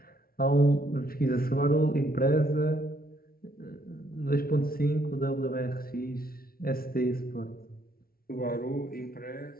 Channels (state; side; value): late; right; 0.43 ms